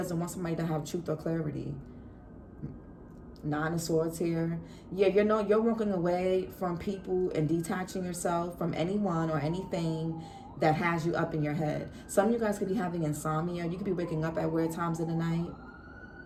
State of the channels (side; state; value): both; identical; correlation 1.00